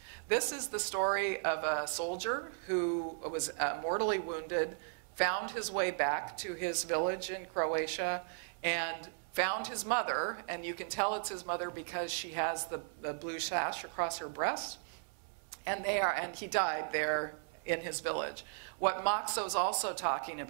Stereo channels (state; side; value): silent; left; 54 dB below the other